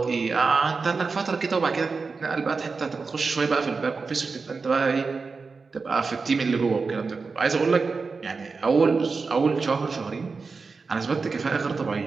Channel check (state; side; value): quieter; left; 4.5 dB